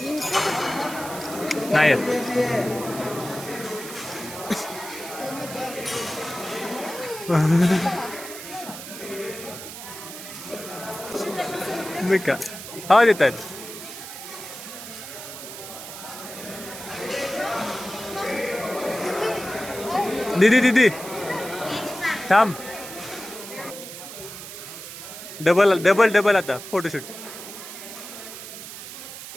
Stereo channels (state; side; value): noise; right; hiss, 11 dB below the sound